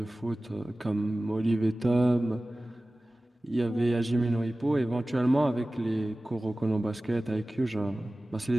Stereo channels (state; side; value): normal; both; correlation 0.97